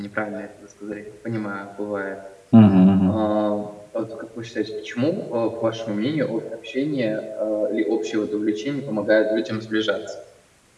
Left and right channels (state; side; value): identical; both; correlation 1.00